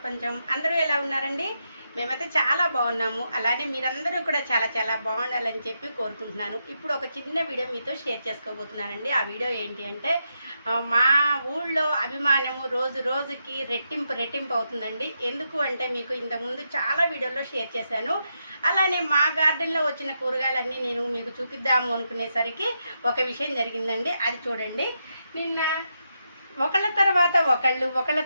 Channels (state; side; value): inverted; both; correlation -0.83